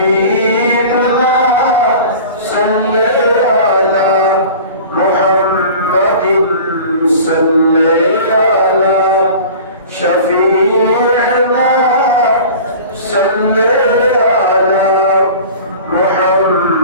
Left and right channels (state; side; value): inverted; both; correlation -0.40